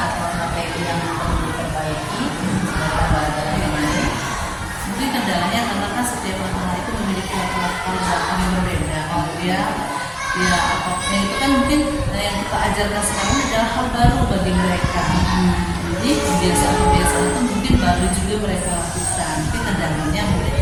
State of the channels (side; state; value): both; identical; correlation 1.00